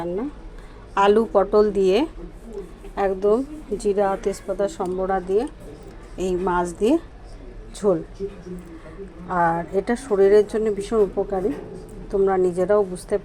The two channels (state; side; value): identical; both; correlation 1.00